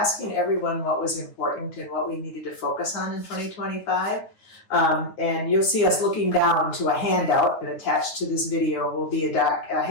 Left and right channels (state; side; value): late; right; 9.3 ms